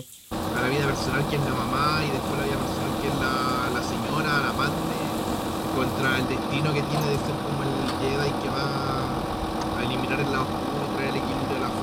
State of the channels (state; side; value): identical; both; correlation 1.00